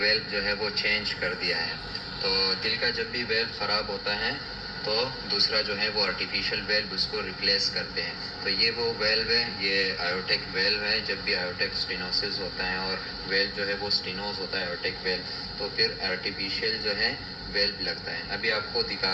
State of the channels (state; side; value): identical; both; correlation 1.00